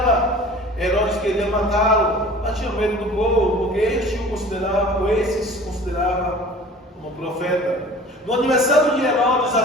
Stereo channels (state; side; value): normal; both; correlation 0.44